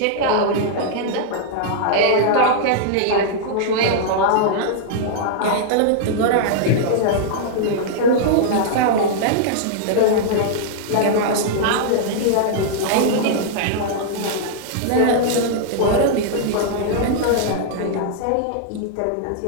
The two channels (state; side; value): different; both; correlation -0.01